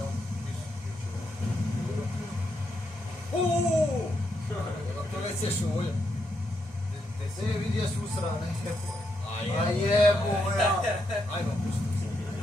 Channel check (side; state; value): both; normal; correlation 0.80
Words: To nećeš uvolja. Te se vidi jesu usrane. A jebo, ja. Ajmo, pusti.